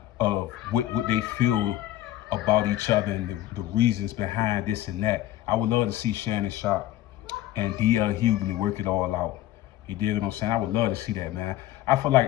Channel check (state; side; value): quieter; right; 14.2 dB